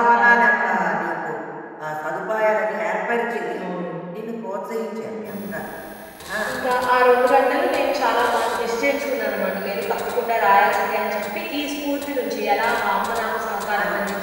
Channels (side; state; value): both; identical; correlation 1.00